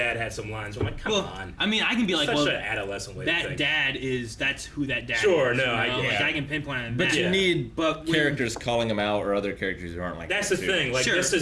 had some lines. I'm like, come Well, on. I mean, I can be like, Such well, an adolescent way to that think. dad that's who that dad Sure, is. no, you know? I get like it. I can pinpoint on But that. you Yeah. need But when- characters calling them out or other characters who aren't like That's that, the too. thing. Like sure. this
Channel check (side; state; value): both; identical; correlation 1.00